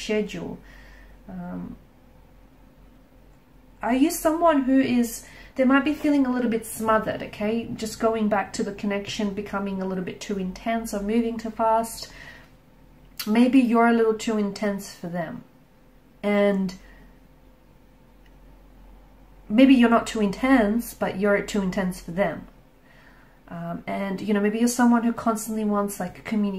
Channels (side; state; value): both; identical; correlation 1.00